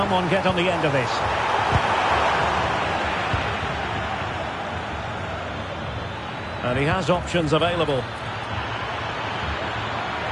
get on the end of this? And he has options available.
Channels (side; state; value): both; identical; correlation 1.00